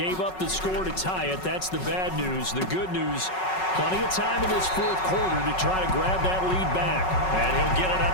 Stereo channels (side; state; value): right; late; 5.4 ms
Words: up the score to tie it. That's the bad news. The good news, plenty of time in this 4th quarter to try to grab that lead back. And he'll get it